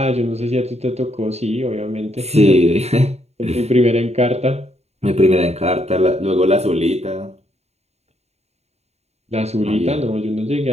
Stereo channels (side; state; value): left; late; 0.31 ms